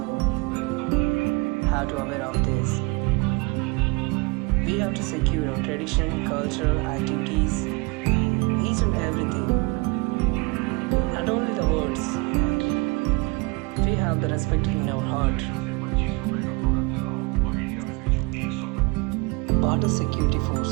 have to aware of this. We have to secure our tradition, cultural activities, each and everything. Not only the words, we have the respect in our heart. Border security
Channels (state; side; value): quieter; left; 27.7 dB